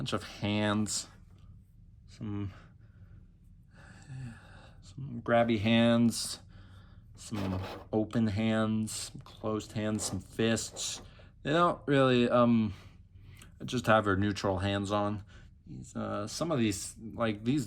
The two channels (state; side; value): identical; both; correlation 1.00